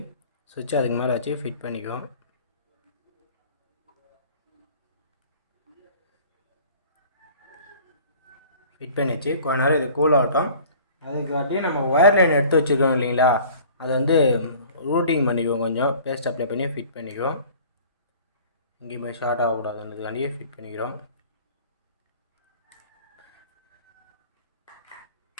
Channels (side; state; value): both; inverted; correlation -0.48